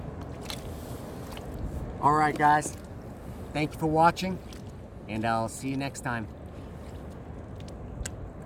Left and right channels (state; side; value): identical; both; correlation 1.00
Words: All right, guys. Thank you for watching, and I'll see you next time.